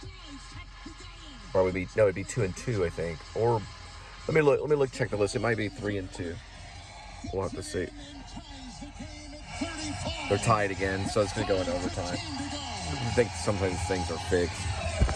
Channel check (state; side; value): identical; both; correlation 1.00